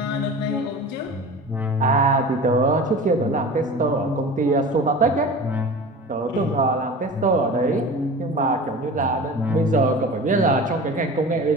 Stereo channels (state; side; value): normal; both; correlation 0.36